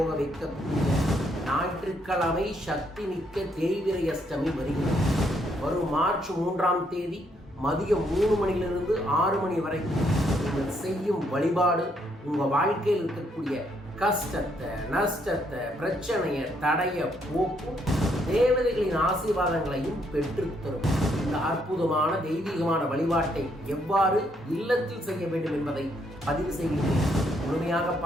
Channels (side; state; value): both; normal; correlation 0.72